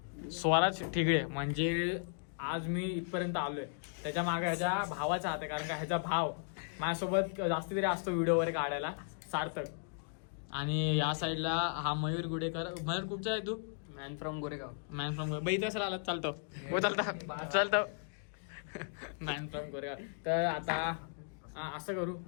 स्वराज ठिगळे. म्हणजे आज मी इथपर्यंत आलोय त्याच्या मागे ह्याच्या भावाचा हात आहे. कारण का ह्याचा भाव माझ्यासोबत जास्ती तरी असतो व्हिडिओ वगैरे काढायला, सार्थक. आणि या साईडला हा मयूर गुडेकर. मयूर कुठचा आहे तू? Man from Goregaon. बाई तसं आला चालतो मॅन फ्रॉम गोरेगाव. तर आता असं करू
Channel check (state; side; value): silent; right; digital silence